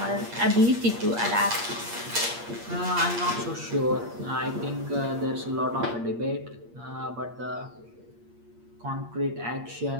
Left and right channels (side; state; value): left; late; 8.5 ms